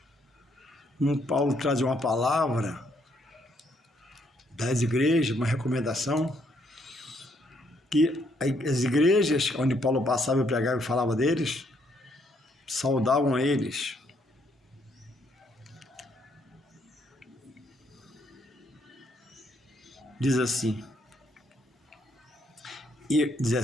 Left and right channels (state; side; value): normal; both; correlation 0.71